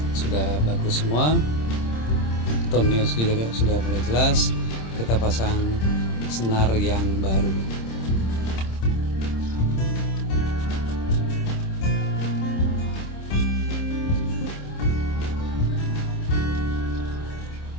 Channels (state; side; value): late; right; 26 ms